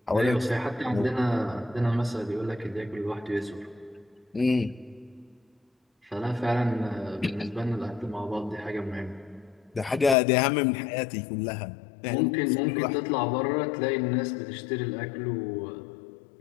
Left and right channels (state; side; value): drops out; right; at 10.2 s